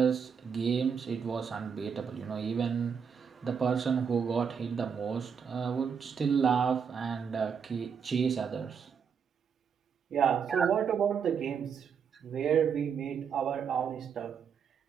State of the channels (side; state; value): left; quieter; 6.8 dB